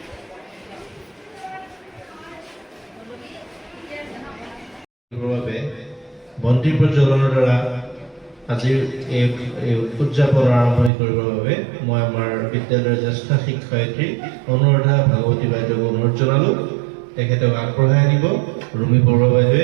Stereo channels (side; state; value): left; drops out; at 10.9 s